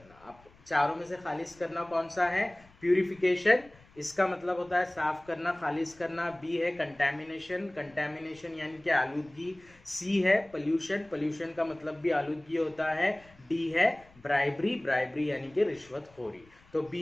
अब चारों में से खालिस करना कौन सा है, प्यूरिफिकेशन, इसका मतलब होता है साफ करना, खालिस करना। बी है कंटैमिनेशन, कंटैमिनेशन यानी कि आलूदगी। सी है पोल्यूशन, पोल्यूशन का मतलब भी आलूदगी होता है। डी है ब्राइबरी, ब्राइबरी यानी कि रिश्वतखोरी। तो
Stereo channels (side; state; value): left; noise; rumble, 27 dB below the sound